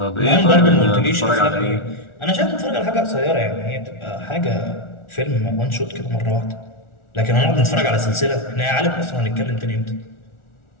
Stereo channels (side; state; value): right; late; 1.4 ms